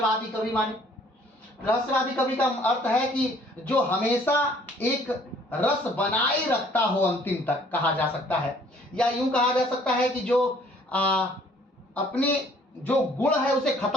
कवि माने, रहस्यवादी कवि का अर्थ है कि जो हमेशा एक रस बनाए रखता हो अंतिम तक, कहा जा सकता है। या यूं कहा जा सकता है कि जो अपने जो गुण है उसे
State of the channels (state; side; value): normal; both; correlation 0.58